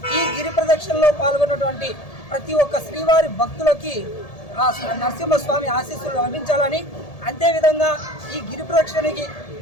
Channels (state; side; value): late; right; 1.7 ms